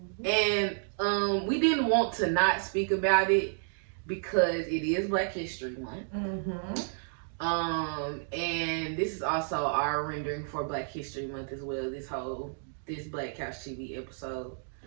And we didn't want to not speak about it because it is Black History Month. And this is also our rendering for Black History Month as well, this Black Couch TV episode.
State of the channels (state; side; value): silent; left; digital silence